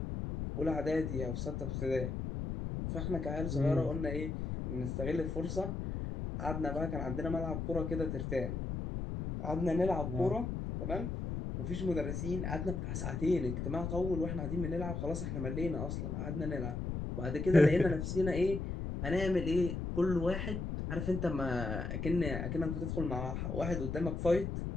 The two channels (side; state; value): left; noise; rumble, 3 dB below the sound